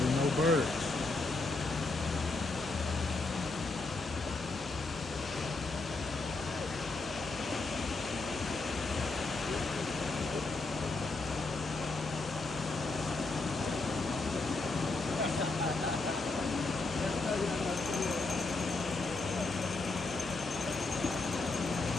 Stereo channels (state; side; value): quieter; right; 3.5 dB